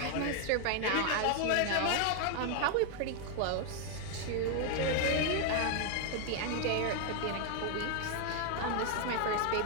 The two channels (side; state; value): both; different; correlation 0.00